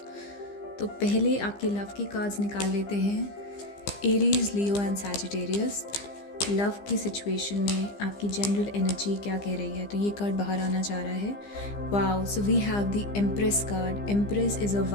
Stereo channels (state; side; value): late; right; 15 ms